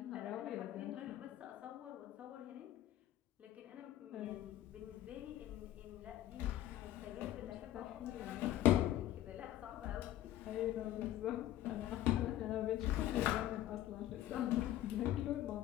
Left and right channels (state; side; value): quieter; right; 13.4 dB